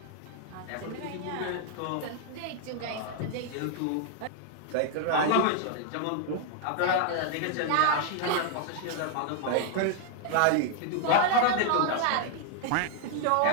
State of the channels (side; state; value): both; different; correlation 0.00